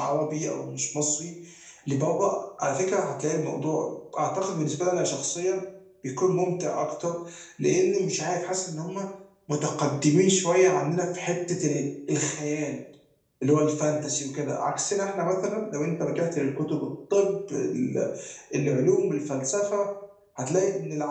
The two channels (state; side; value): identical; both; correlation 1.00